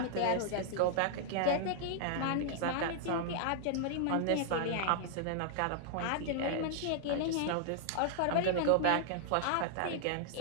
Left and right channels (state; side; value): different; both; correlation -0.01